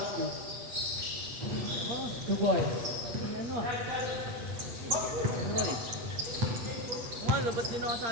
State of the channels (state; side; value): late; left; 8.5 ms